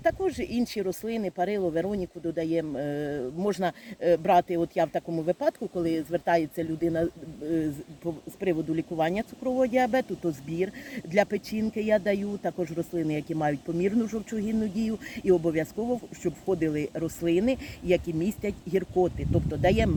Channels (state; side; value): identical; both; correlation 1.00